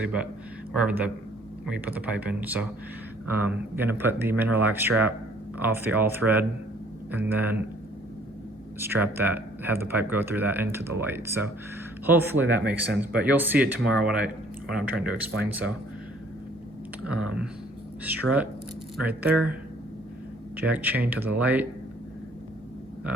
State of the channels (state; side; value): normal; both; correlation 0.58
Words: but wherever we put the pipe in. So gonna put the mineralac strap off the all thread and then strap that, have the pipe go through that into the light. So hopefully that makes sense, but you'll see it tomorrow what I'm trying to explain. So strut right there, jack chain to the light,